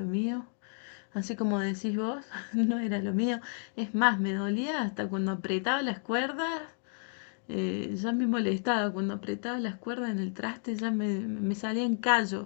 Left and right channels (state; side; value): silent; right; 57 dB below the other